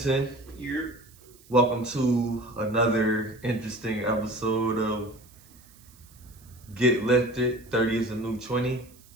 Welcome to another interesting episode of Get Lifted, 30 is a new 20.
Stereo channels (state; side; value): noise; right; hiss, 26 dB below the sound